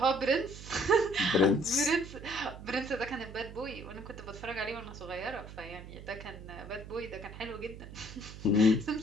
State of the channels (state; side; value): noise; right; hum, 13 dB below the sound